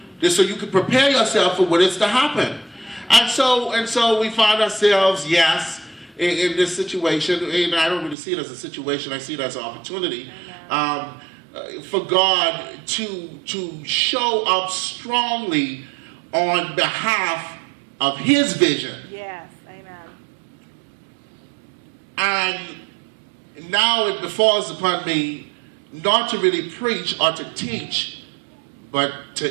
This so you can prepare yourself for what is to happen. And so we find ourselves, yes, in this situation. And I don't really see it as a situation. I see it as an opportunity for God to show up strongly on behalf of his vision. Yes, amen. And now it befalls upon me not to really preach or to teach, but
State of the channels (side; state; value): left; drops out; at 8.2 s